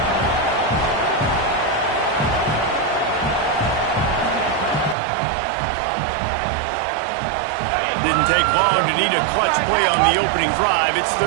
Didn't take long to need a clutch play on the opening drive. It's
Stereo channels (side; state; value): left; drops out; at 5.0 s